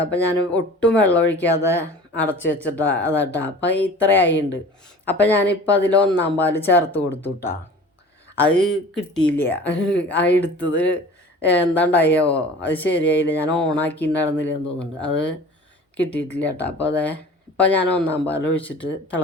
അപ്പോൾ ഞാൻ ഒട്ടും വെള്ളം ഒഴിക്കാതെ അടച്ച് വെച്ചിട്ടാ അതാട്ടാ. അപ്പോൾ ഇത്രയായിട്ടുണ്ട്. അപ്പോൾ ഞാനിപ്പോൾ അതിൽ 1-ാം പാൽ ചേർത്ത് കൊടുത്തു കേട്ടോ. അത് കിട്ടിയില്ല, ആ എടുത്തത് എന്താണ്ടായോ അത് ശരിയായില്ല, ഞാൻ ഓണാക്കിയിട്ടുണ്ടായിരുന്നില്ല എന്ന് തോന്നുന്നുണ്ട്, അത് കിട്ടിയിട്ടില്ല കേട്ടോ. അപ്പോൾ ഇപ്പോൾ ഞാൻ 1-ാം പാൽ ഒഴിച്ചിട്ട്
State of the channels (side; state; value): both; normal; correlation 0.42